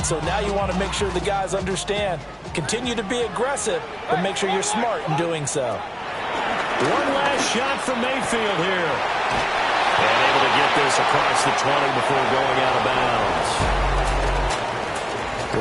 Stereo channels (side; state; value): both; identical; correlation 1.00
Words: So now you want to make sure the guys understand. Continue to be aggressive, but make sure you're smart in doing so. One last shot from Mayfield here. And able to get this across the 20 before going out of bounds.